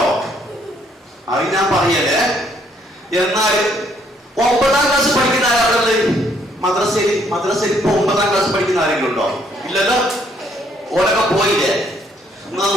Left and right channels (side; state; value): both; normal; correlation 0.67